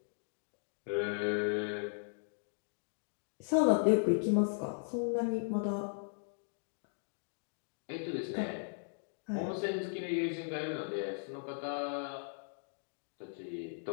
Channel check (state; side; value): silent; right; digital silence